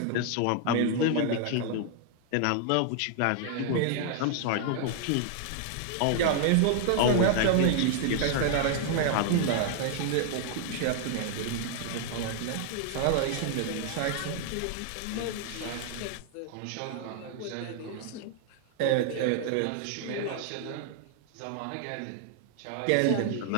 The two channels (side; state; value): both; different; correlation 0.00